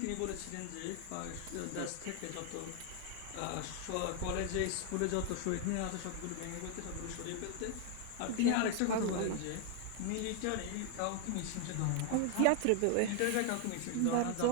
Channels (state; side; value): different; both; correlation 0.00